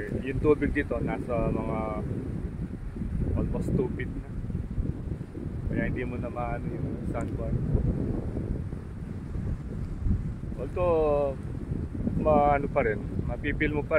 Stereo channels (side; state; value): both; identical; correlation 1.00